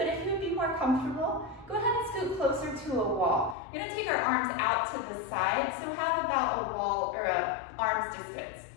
if you would be more comfortable, go ahead and scoot closer to a wall. We're gonna take our arms out to the side, so have about a wall or a arm's distance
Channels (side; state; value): right; drops out; at 3.6 s